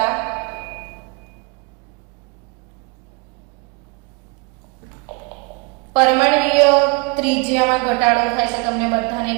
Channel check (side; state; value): left; quieter; 29.7 dB